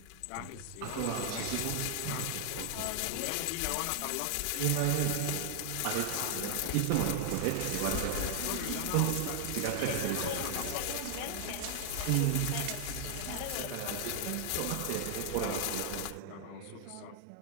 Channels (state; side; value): different; both; correlation 0.00